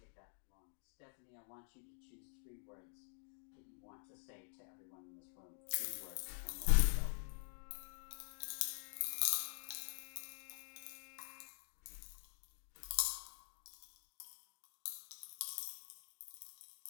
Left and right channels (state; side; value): silent; right; digital silence